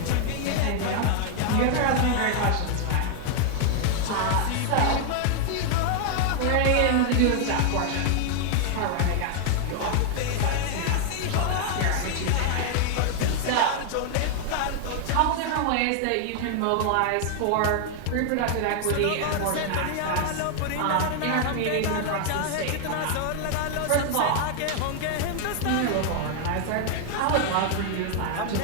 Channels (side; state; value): both; different; correlation 0.00